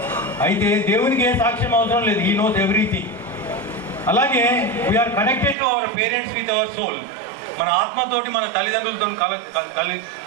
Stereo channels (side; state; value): left; drops out; at 5.6 s